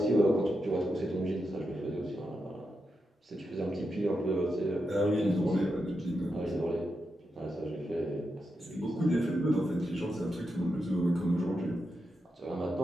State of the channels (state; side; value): normal; both; correlation 0.86